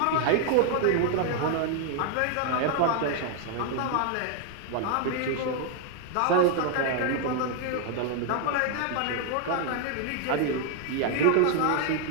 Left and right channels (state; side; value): different; both; correlation 0.00